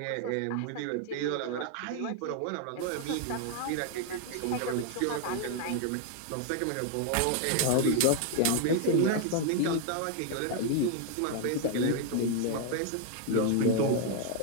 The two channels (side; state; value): both; different; correlation 0.00